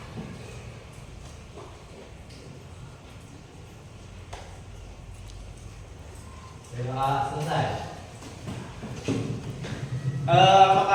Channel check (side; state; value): both; identical; correlation 1.00